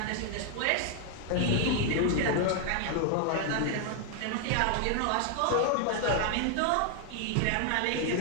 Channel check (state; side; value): different; both; correlation 0.00